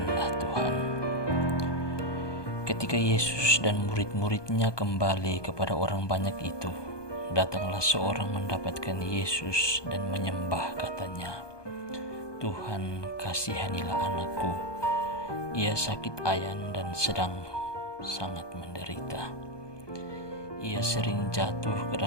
Tuhan. Ketika Yesus dan murid-muridnya kembali kepada orang banyak itu, datanglah seorang mendapatkan Yesus dan menyembah, katanya, "Tuhan, kasihanilah anakku. Ia sakit ayan dan sedang sangat menderita. Ia sering jatuh ke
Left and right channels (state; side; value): late; right; 1.2 ms